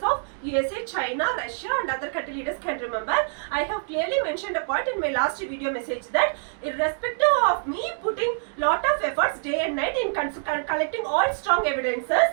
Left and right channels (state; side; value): silent; left; digital silence